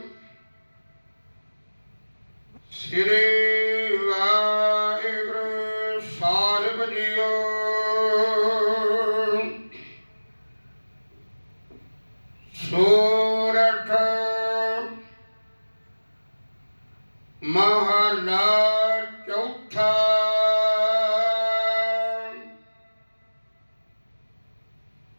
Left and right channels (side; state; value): both; inverted; correlation -1.00